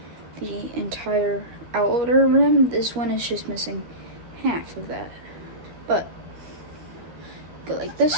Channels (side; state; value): left; late; 12 ms